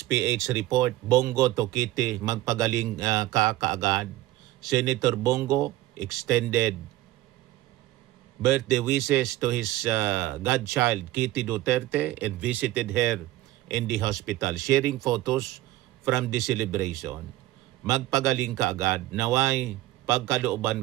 PH report, Bongo to Kitty, magpagaling kaagad. Senator Bongo extended birthday wishes to his godchild, Kitty Duterte, and visited her in the hospital, sharing photos from the celebration. Magpagaling kaagad, naway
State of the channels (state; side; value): quieter; left; 16.2 dB